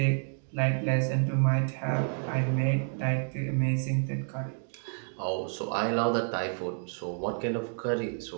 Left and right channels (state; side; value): silent; left; 58 dB below the other